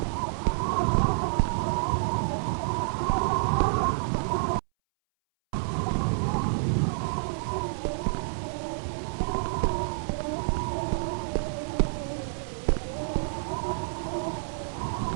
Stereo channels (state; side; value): silent; left; 59 dB below the other